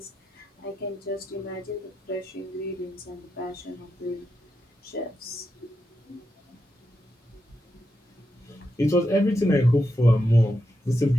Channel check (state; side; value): normal; both; correlation 0.86